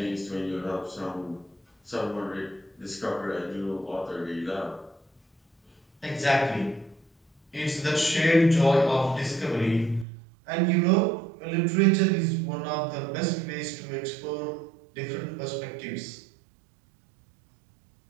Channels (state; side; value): drops out; left; at 10.1 s